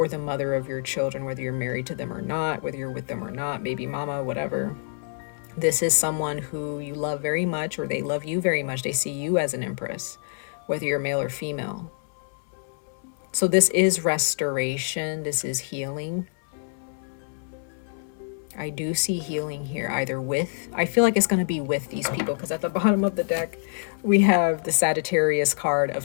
the mother of your children, whether you're married to them or not, whether you're with them or not, baby mama, whatever. This is someone who you love very much, or they love you very much. They see you as an empress, whether you're male or female. So this is restoration. This is healing. I do see healing here, either with, I feel like it's going to be with these people, because at the bottom of the deck, we have the Sagittarius card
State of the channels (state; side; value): silent; right; 61 dB below the other